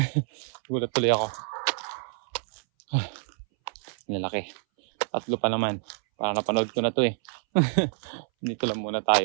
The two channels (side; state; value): left; silent; 60 dB below the other